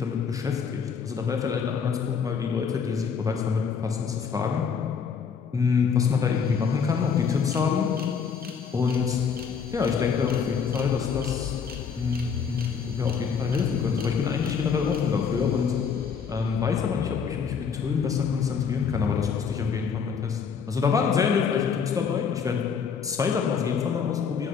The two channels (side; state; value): right; quieter; 6.4 dB